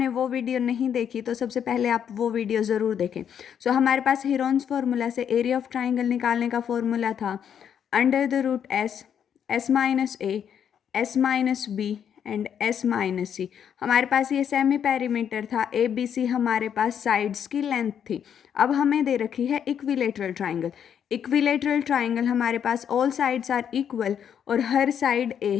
वो वीडियो नहीं देखी तो सबसे पहले आप वो वीडियो ज़रूर देखें। हमारे पास हिरॉन्स फार्मूला से एरिया ऑफ ट्राइंगल निकालने का फॉर्मूला था under the root S minus A, S minus B and S minus C. हमारे पास ये सेमी पेरीमीटर था, ए बी सी हमारे पास साइड्स की लेंथ थी। अब हमें दे रखी है इक्विलेटरल ट्राइंगल। इक्विलेटरल ट्राइंगल हमारे पास ऑल साइड्स आर इक्वल और हर साइड ए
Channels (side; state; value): right; quieter; 8.5 dB